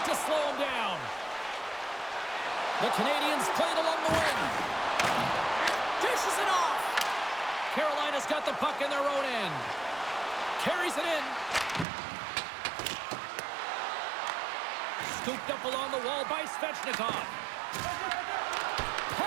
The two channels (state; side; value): drops out; left; at 11.9 s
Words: to slow him down. The Canadiens played along the wing. Dishes it off. Carolina's got the puck in their own end. Carries it in. Scooped up along the wall by Svechnikov.